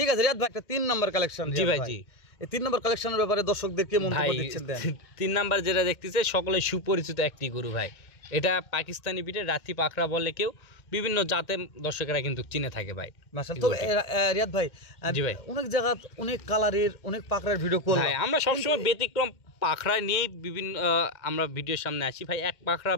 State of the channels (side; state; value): right; late; 2.1 ms